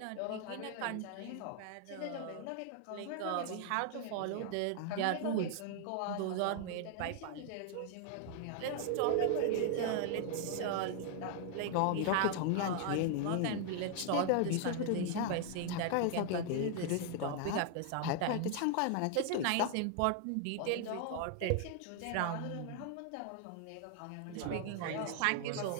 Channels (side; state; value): both; different; correlation 0.00